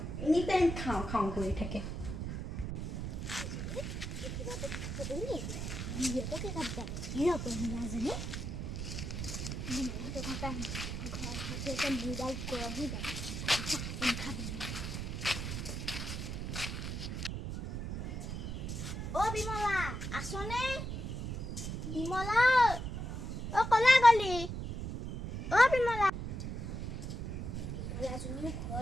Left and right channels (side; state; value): right; noise; rumble, 4 dB below the sound